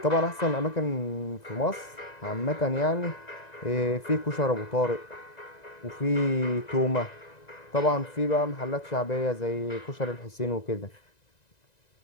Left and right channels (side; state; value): right; late; 1.9 ms